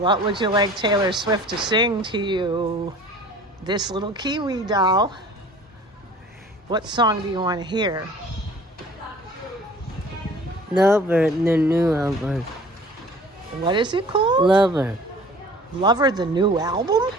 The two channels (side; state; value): both; normal; correlation 0.47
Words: would you like Taylor Swift to sing to you? This little Kiwi doll. What song do you want to hear? Lover, the new album. What is it called? Lover. Lover, the new album?